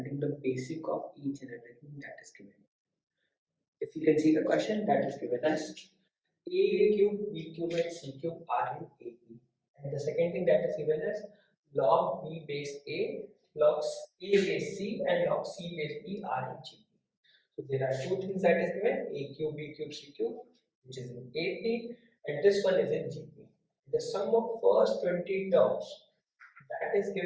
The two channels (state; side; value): identical; both; correlation 1.00